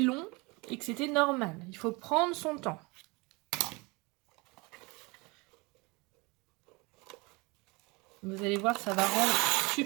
et que c'était normal. Il faut prendre son temps. Vous allez voir, ça va rendre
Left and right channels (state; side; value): quieter; left; 26.3 dB